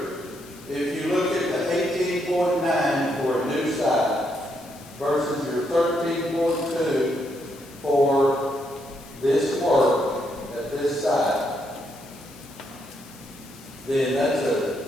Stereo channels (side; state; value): left; noise; hiss, 21 dB below the sound